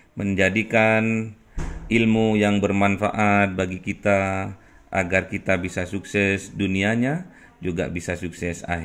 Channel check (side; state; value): both; identical; correlation 1.00